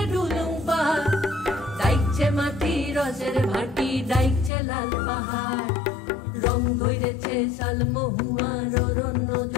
ডুলুং পাহাড়, ডাইকছে মাটি রসের ভাটি, ডাইকছে লাল পাহাড়। রং ধরেছে শালমহুয়ার অরণ্য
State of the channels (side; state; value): right; drops out; at 4.5 s